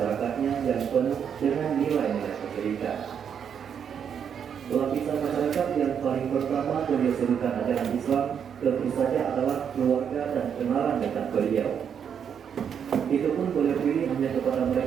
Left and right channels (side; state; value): left; quieter; 7.8 dB